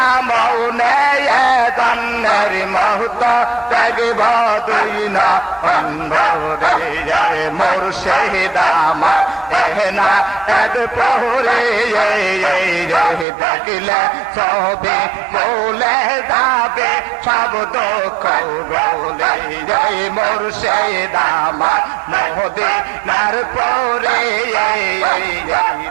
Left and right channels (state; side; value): drops out; left; at 13.2 s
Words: জন্মের মৌত দেখব দুই না অন্ধরে মুর্শিদ আমার এহনা এদ পহরে দেখলে সবে বলে যাবে সব দুঃখ বলে মুর্শিদ আমার মদিনার পরে